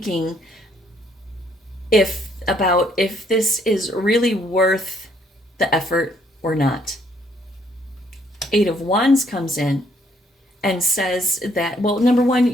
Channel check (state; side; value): normal; both; correlation 0.68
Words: if this is really worth the effort or not. Eight of Wands comes in and says that, well, number one,